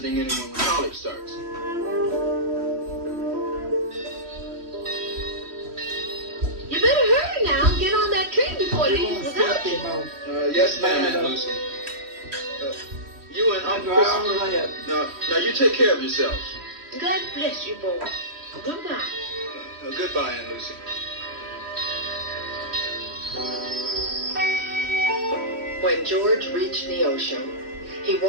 anyone when college starts. You better hurry now. Get on that train before it leaves without you. Yes, ma'am, Aunt Lucy. You and Uncle Christopher. Now you take care of yourselves. God bless you, boy. Goodbye. Goodbye, Aunt Lucy. When George reached Neosho, he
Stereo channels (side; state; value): left; late; 3.1 ms